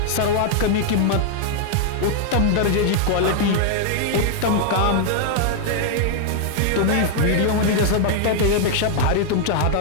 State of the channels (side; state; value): both; different; correlation 0.00